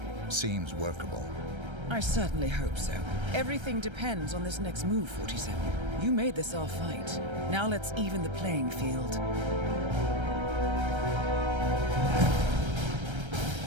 Seems workable. I certainly hope so. Everything depends on this next move, 47. You made this our fight. Now let's even the playing field.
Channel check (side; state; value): left; late; 1.3 ms